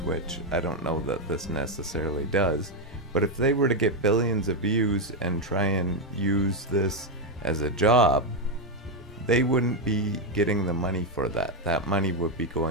I don't know that this necessarily does, but if they were to get billions of views and try and use this as a job, they wouldn't be getting the money for that. That money would be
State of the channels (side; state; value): both; normal; correlation 0.06